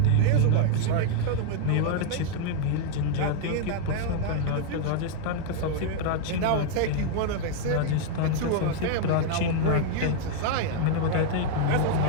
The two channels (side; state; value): both; different; correlation -0.01